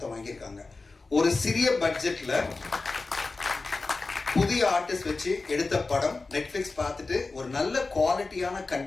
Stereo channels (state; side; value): quieter; right; 3.7 dB